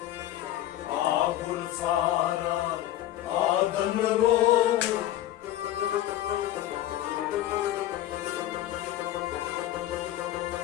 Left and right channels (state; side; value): quieter; right; 13.6 dB